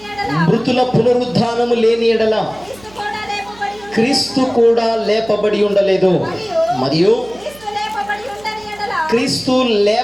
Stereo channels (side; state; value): right; noise; hum, 23 dB below the sound